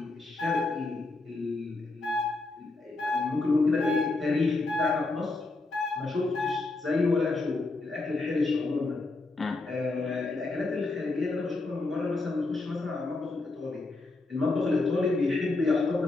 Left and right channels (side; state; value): right; quieter; 3.3 dB